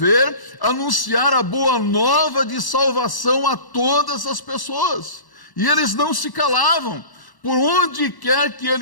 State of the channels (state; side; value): late; right; 1.1 ms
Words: anunciar a boa nova de salvação a todas as pessoas. E eles não se calavam. Por onde quer que